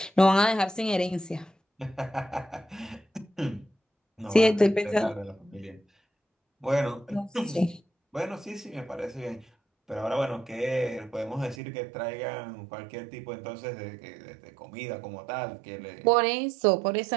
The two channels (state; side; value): drops out; left; at 11.6 s